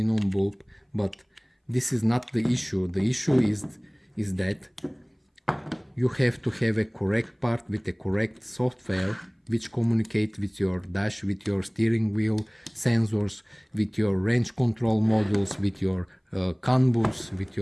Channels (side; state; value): both; identical; correlation 1.00